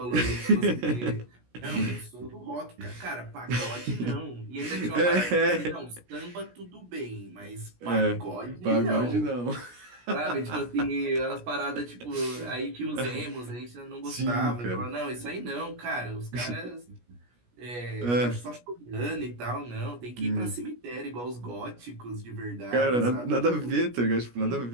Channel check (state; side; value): late; left; 17 ms